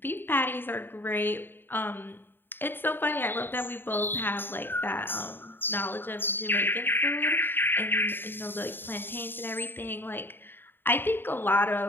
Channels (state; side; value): late; right; 0.098 ms